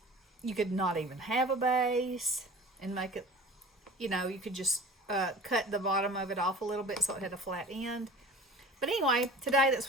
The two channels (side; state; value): both; normal; correlation 0.42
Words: You could not even have a base and make it, you could just cut the bottom of it off a little bit so it had a flat end. But anyway, today that's